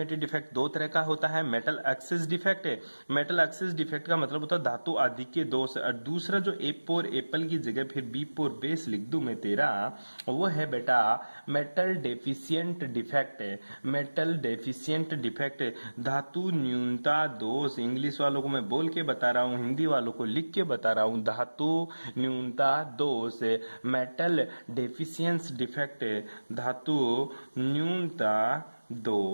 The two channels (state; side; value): inverted; both; correlation -1.00